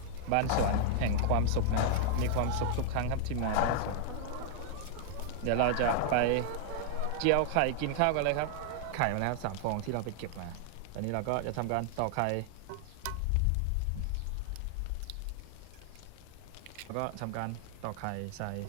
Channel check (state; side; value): different; both; correlation 0.00